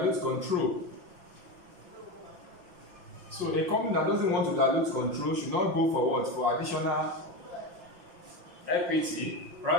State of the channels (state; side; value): late; left; 5.9 ms